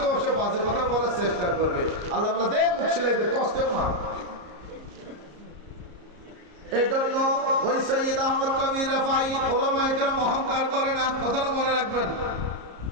সে বাজে কথা বলার চেষ্টা করবে। আল্লাহ দেখ মুখ ছেলেদের কষ্টেও না। এই জন্য ওই সৈয়দ আহমদ কবির রেফাই ওলামায়ে কেরাম অহংকার করে না, কথাটা মনে রাখবেন।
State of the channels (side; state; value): left; late; 34 ms